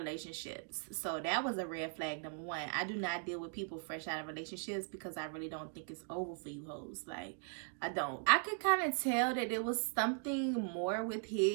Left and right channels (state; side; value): silent; left; 52 dB below the other